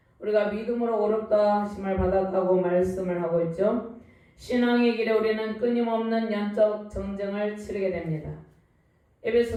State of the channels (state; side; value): identical; both; correlation 1.00